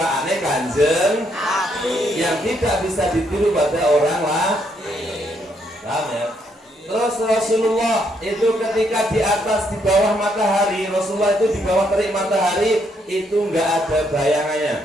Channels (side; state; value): both; normal; correlation 0.73